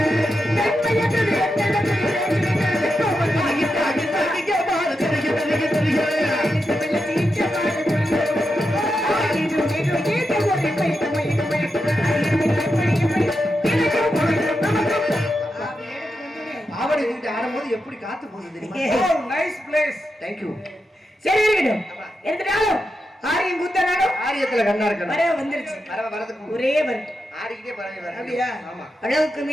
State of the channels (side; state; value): both; normal; correlation 0.87